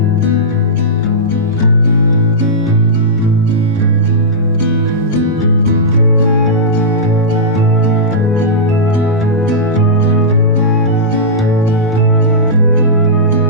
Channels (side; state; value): both; normal; correlation -0.14